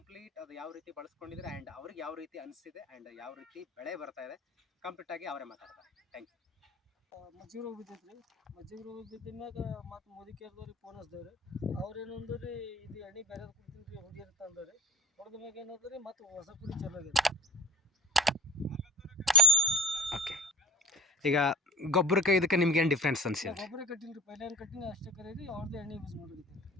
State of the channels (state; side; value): normal; both; correlation 0.34